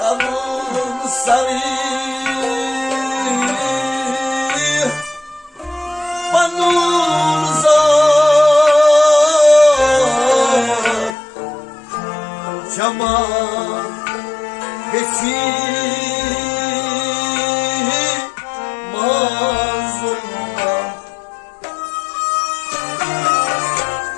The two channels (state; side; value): drops out; right; at 11.2 s